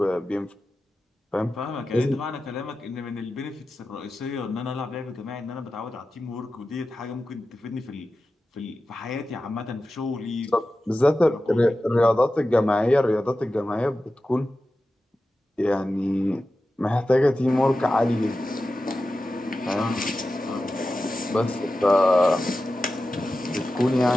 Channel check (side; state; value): both; normal; correlation 0.93